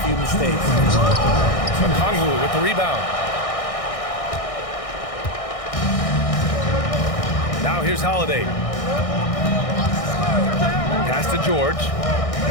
few mistakes. Okongwu with the rebound. Now here's Holiday. Pass to George.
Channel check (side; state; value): right; late; 1.6 ms